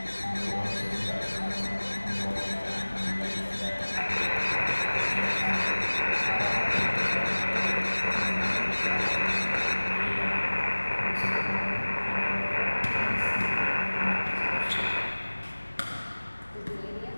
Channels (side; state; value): both; inverted; correlation -1.00